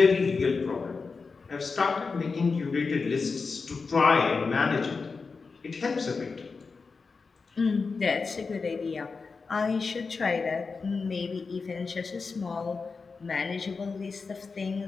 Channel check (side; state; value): right; quieter; 4.6 dB